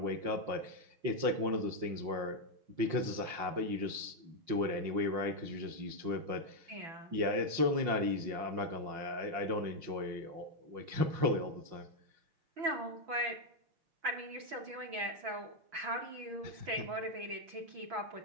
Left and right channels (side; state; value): left; late; 5.7 ms